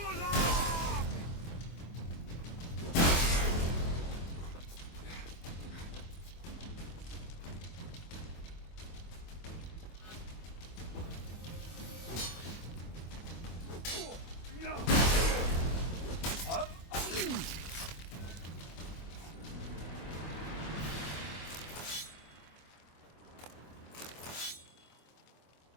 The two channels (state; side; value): late; right; 24 ms